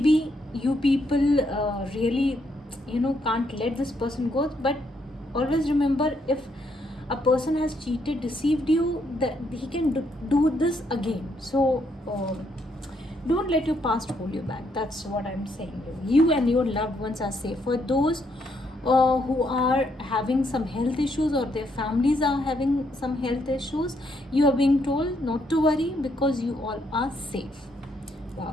you people really can't let this person go, but always remember, if a person has cheated, deceived you, that he can do this again. So don't let your past hold you back. That's what I'm saying. You and your loved ones are safe. For those who are having some health issues or their families are having some health issues, you are being told not to worry because you all are safe.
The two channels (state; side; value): normal; both; correlation 0.74